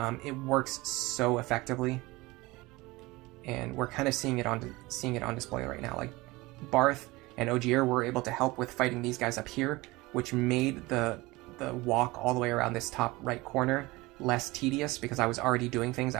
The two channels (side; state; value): left; quieter; 21.5 dB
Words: It works so effectively, and we're kind of seeing it on display right now. Like Barth and Ogier were able to help with fighting these guys up here, which made the walk all the way around this top right corner less tedious because I was already doing things.